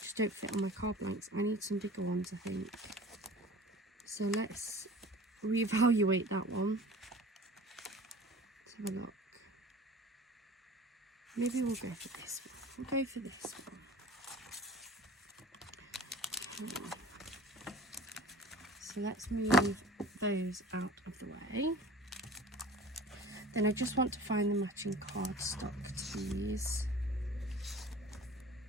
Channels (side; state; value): both; normal; correlation 0.42